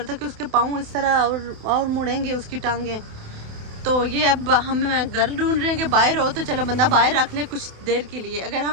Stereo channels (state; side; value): late; left; 28 ms